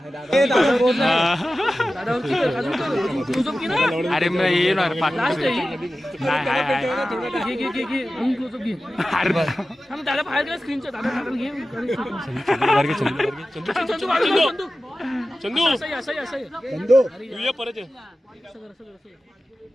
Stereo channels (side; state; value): both; normal; correlation 0.95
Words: अरे मग येणार दादा बाहेर गेला स्क्रीनच्या दादा घे चंदू असं तू ये परत ये.